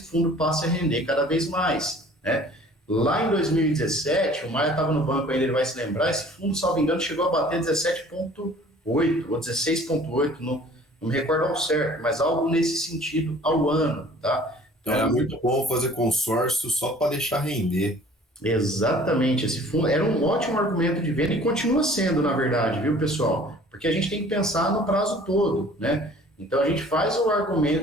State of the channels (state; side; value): normal; both; correlation 0.51